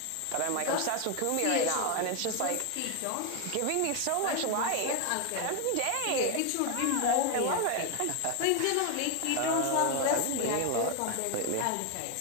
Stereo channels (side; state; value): both; different; correlation 0.01